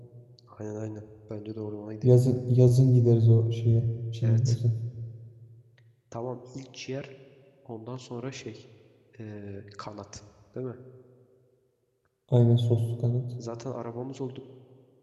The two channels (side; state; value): both; identical; correlation 1.00